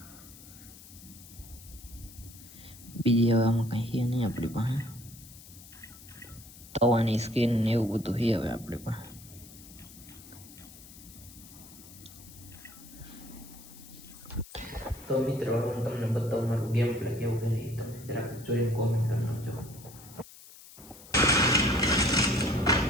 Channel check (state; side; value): noise; left; hiss, 19 dB below the sound